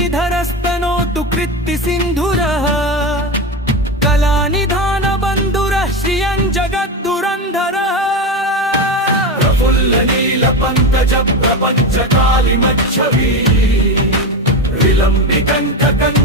कृत्ति सिन्धुरः कलानिधान बन्धुरः श्रियं जगद्दुरन्धरः। प्रफुल्ल नील पङ्कज प्रपञ्च कालिमच्छवी विलम्बिकण्ठ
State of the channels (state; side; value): normal; both; correlation 0.18